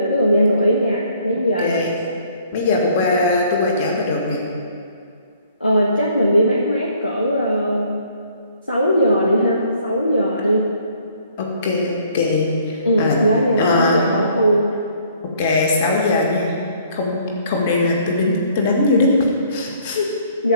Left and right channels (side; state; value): both; inverted; correlation -0.61